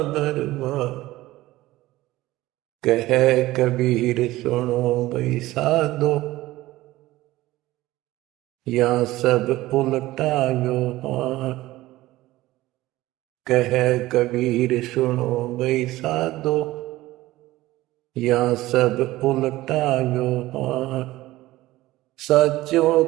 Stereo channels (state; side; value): quieter; left; 17.3 dB